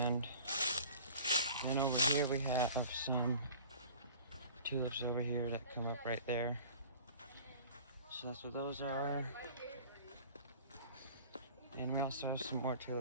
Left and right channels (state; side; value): inverted; both; correlation -0.44